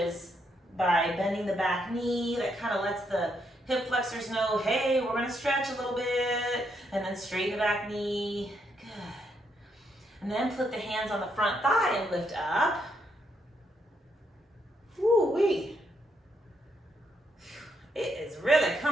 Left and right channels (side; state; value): both; normal; correlation 0.77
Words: by bending the back knee. That kind of lets the hip flexors know, hey, we're going to stretch a little bit. And then straighten the back knee. Good. And then put the hands on the front thigh and lift up. Woo-wee. It is really